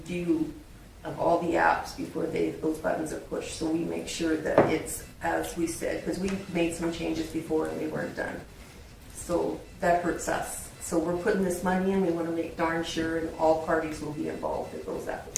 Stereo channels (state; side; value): identical; both; correlation 1.00